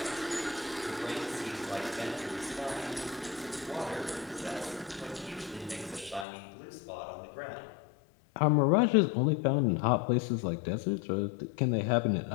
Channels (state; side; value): drops out; right; at 6.2 s